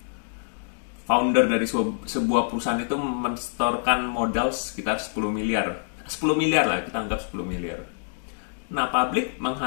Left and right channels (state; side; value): silent; right; digital silence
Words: founder dari sebuah perusahaan itu mensetorkan modal sekitar 10 miliar lah, kita anggap 10 miliar. Nah, publik